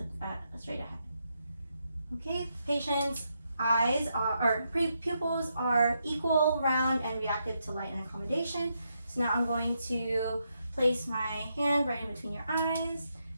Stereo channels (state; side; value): inverted; both; correlation -0.81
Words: straight ahead. Okay, patient's eyes or pupils are equal, round, and reactive to light and accommodation. So now I'm going to place my hand right in between your eyes